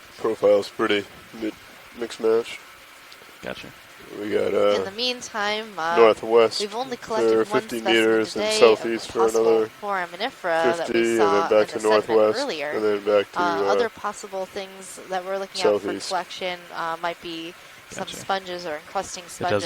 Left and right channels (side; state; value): both; identical; correlation 1.00